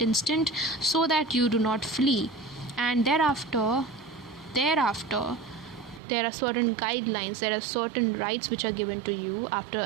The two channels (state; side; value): drops out; left; at 6.0 s